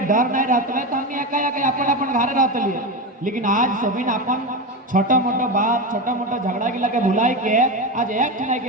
डर नहीं रहते तो हमने अपन अपन घरे रहते लिए, लेकिन आज सभी अपन छोटा मोटा बात, छोटा मोटा झगड़ा के लगे भुलाई के आज एक ठने के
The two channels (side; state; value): both; normal; correlation 0.18